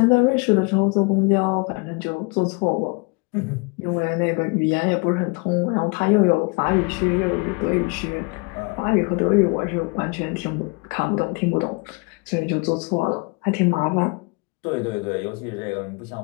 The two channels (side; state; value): right; quieter; 30.4 dB